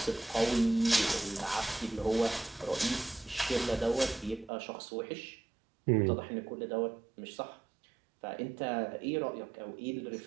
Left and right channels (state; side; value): drops out; left; at 4.5 s